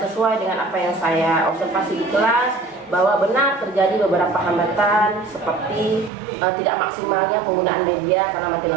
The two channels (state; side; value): drops out; left; at 6.1 s